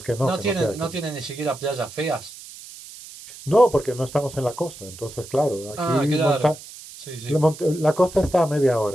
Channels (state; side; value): noise; right; hiss, 16 dB below the sound